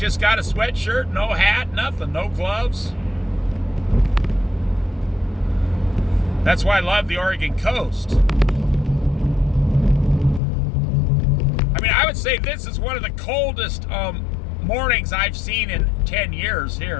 got a sweatshirt, no hat, nothing, no gloves. That's why I love the Oregon coast. I mean, I would say this is one of the coldest mornings I've seen in 10 years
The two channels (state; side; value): drops out; right; at 10.4 s